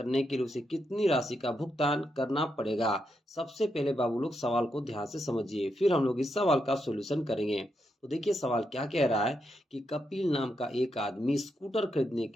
के लिए उसे कितनी राशि का भुगतान करना पड़ेगा। सबसे पहले बाबू लोग सवाल को ध्यान से समझिए, फिर हम लोग इस सवाल का सॉल्यूशन करेंगे। तो देखिए सवाल क्या कह रहा है कि कपिल नाम का एक आदमी स्कूटर खरीदने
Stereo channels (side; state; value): both; normal; correlation 0.82